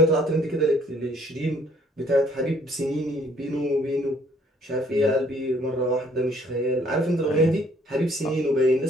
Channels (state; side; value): normal; both; correlation 0.62